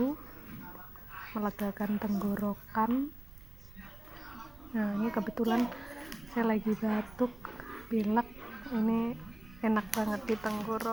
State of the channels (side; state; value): right; noise; rumble, 18 dB below the sound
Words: melegakan tenggorokan. Nah, ini kebetulan saya lagi batuk, pilek, ini enak banget di